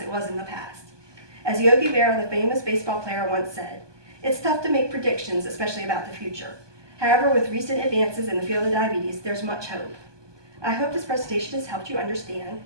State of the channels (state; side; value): late; left; 1.2 ms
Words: it was in the past. As Yogi Berra, the famous baseball player, once said, "It's tough to make predictions, especially about the future. However, with recent advances in the field of diabetes, there's much hope." I hope this presentation has helped you understand